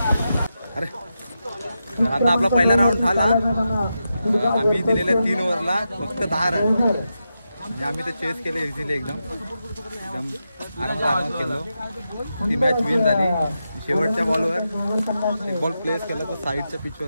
अरे आता आपला पहिला राऊंड झाला आम्ही दिलेल्या 3 ओव्हरला फक्त 10 रन म्हणजे आम्ही ते चेस केले इझिली एकदम आरामात केलो ती मॅच विन झाली शेवटच्या बॉलवर एक बॉल प्लेस केला तर साईडच्या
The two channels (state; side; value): inverted; both; correlation -0.88